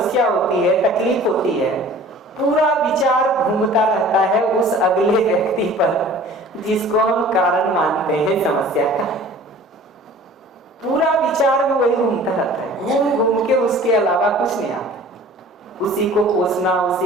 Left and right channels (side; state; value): both; normal; correlation 0.46